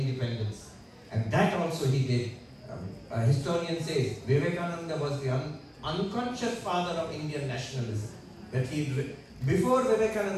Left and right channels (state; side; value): identical; both; correlation 1.00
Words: And that also he did. A historian says Vivekananda was the unconscious father of Indian nationalism. That before